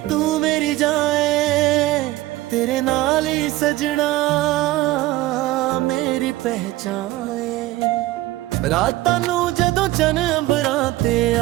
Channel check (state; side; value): quieter; left; 17.5 dB